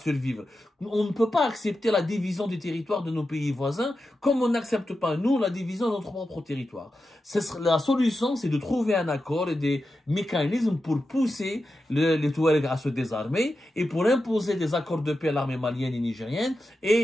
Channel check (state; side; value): normal; both; correlation 0.90